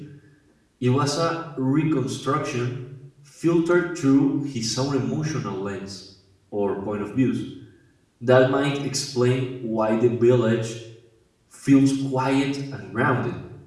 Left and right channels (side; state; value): both; identical; correlation 1.00